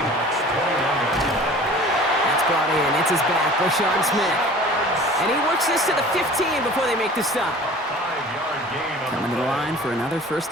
21-yard line. That's brought in. It's his back, Rashawn Smith. And he works this to the 15 before they make the stop. 5-yard gain on Coming to the line for another 1st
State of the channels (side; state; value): both; normal; correlation 0.44